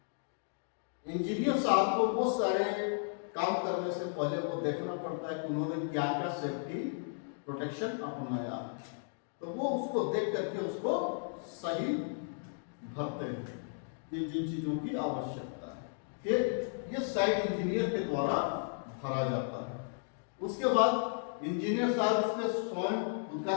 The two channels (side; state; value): right; silent; digital silence